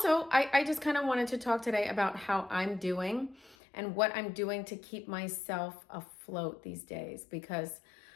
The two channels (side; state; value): right; drops out; at 3.6 s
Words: I just kind of wanted to talk today about how I'm doing and what I'm doing to keep myself afloat these days because